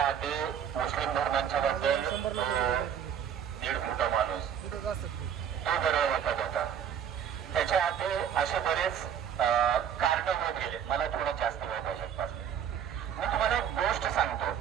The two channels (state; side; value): quieter; left; 8.8 dB